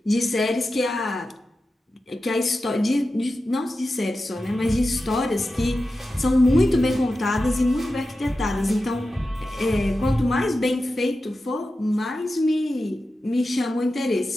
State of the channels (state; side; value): normal; both; correlation 0.92